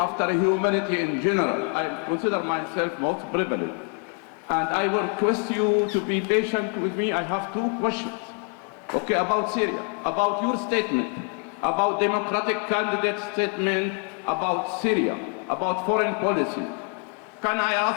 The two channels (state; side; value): quieter; right; 36.8 dB